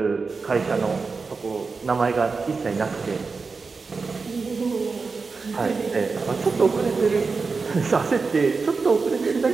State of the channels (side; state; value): left; quieter; 4.5 dB